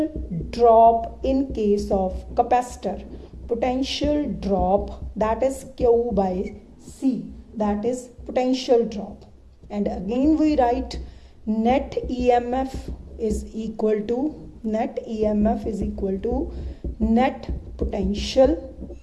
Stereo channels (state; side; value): identical; both; correlation 1.00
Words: drop in case of capacitor. Potential drop, that is Q by C, that is potential drop. And again we write net EMF is equal to net potential